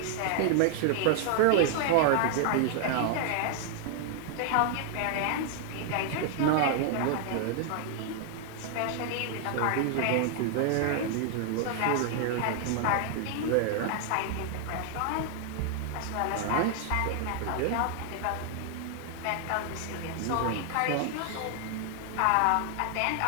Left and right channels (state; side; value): different; both; correlation 0.00